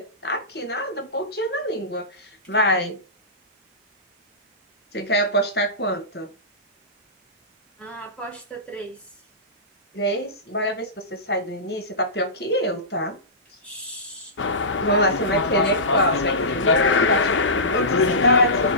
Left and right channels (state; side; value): normal; both; correlation -0.20